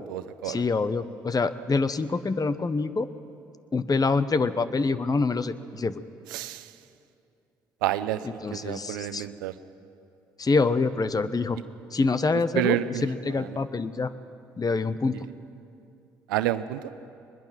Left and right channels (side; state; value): both; normal; correlation 0.67